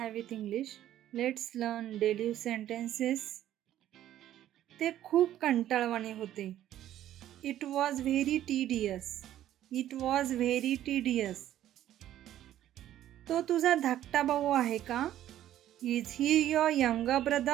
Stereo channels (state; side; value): quieter; left; 12.3 dB